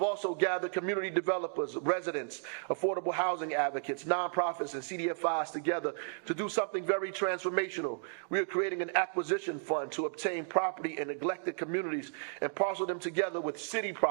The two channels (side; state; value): left; silent; digital silence